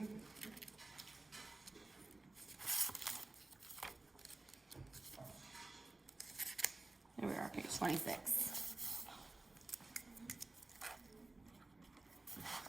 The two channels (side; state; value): left; quieter; 3.1 dB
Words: Here we are, page 26.